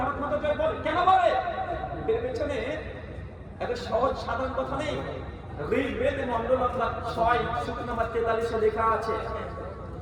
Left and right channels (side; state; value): both; identical; correlation 1.00